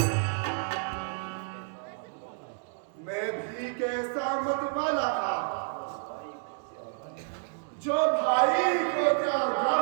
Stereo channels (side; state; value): left; silent; digital silence